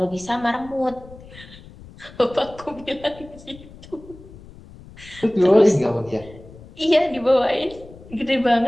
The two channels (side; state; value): left; noise; rumble, 19 dB below the sound